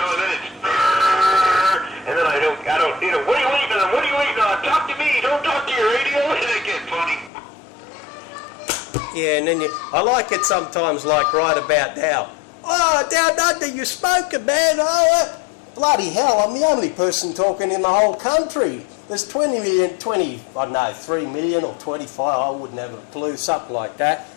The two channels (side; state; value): right; drops out; at 7.3 s